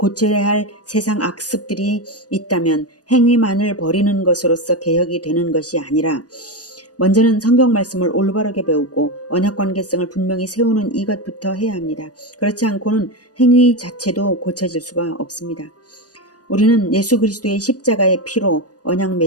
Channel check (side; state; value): right; late; 0.68 ms